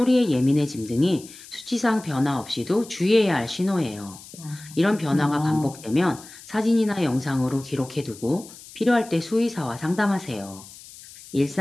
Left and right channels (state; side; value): noise; left; hiss, 18 dB below the sound